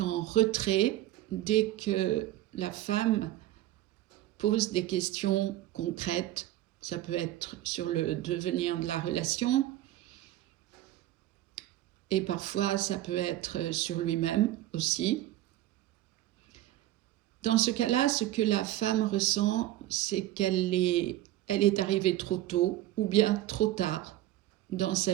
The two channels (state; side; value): quieter; left; 14.6 dB